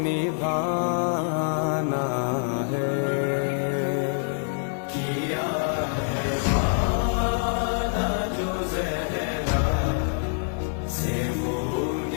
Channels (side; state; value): right; silent; digital silence